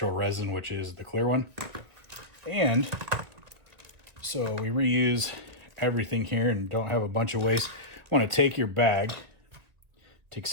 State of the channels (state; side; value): late; left; 2.0 ms